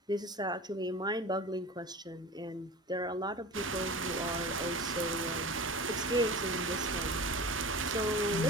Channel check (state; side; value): normal; both; correlation 0.34